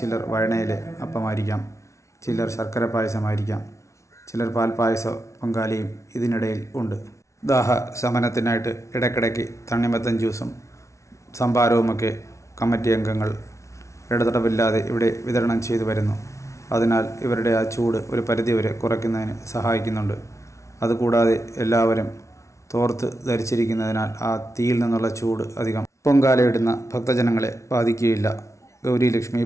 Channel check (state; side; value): late; right; 0.14 ms